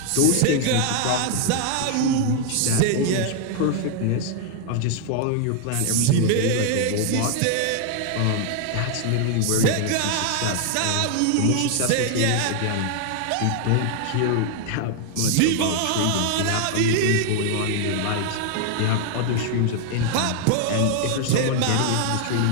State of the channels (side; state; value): both; different; correlation 0.00